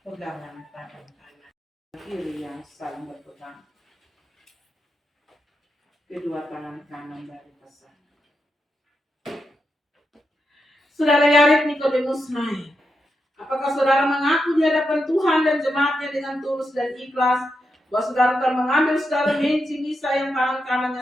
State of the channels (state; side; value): normal; both; correlation 0.85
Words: tangan kanan, kiri yang saling berpegang. Kedua tangan kanan dari pasangan. Saudara Yared Nikodemus naik. Apakah saudara mengaku di hadapan Tuhan dan jemaat-Nya dengan tulus dan ikhlas bahwa saudara telah mengambil saudara Misa yang tangan kanannya